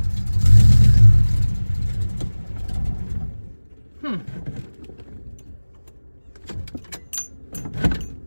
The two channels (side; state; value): both; inverted; correlation -1.00